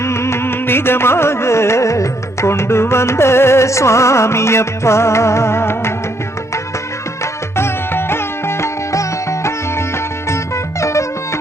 நிஜமாக கொண்டு வந்த சுவாமியப்பா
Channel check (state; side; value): normal; both; correlation 0.72